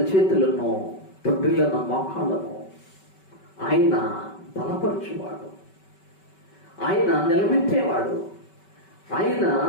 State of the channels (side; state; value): right; late; 5.2 ms